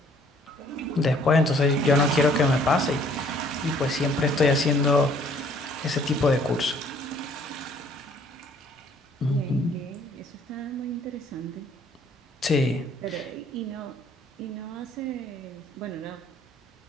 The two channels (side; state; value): both; normal; correlation 0.60